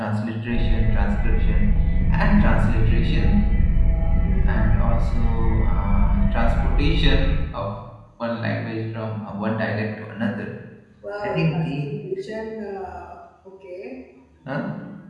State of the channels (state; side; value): identical; both; correlation 1.00